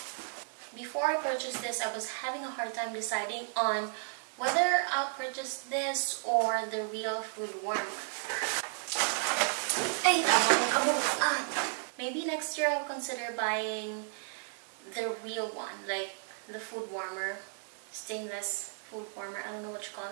Before I purchased this, I was having a hard time deciding on whether I'll purchase this or the real food warmer. Hey, maybe next year I'll consider buying the real one, like the food warmer, stainless food warmer. I don't know what you call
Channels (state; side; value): silent; left; digital silence